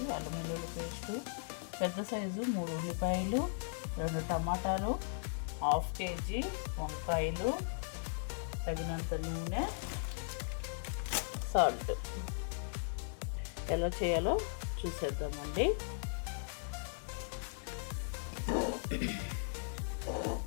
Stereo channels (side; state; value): right; silent; digital silence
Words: అల్లం వెల్లుల్లి పేస్టు, పెద్ద సైజు 3 ఉల్లిపాయలు, 2 టమాటాలు, 1/2 కేజీ వంకాయలు, తగినంత నూనె, సాల్ట్. ఎలా చేయాలో చూసేద్దామండి.